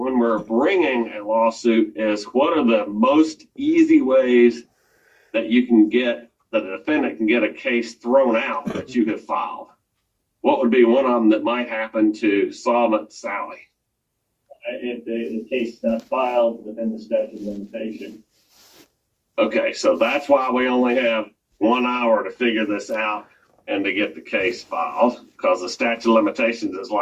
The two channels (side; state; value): both; identical; correlation 1.00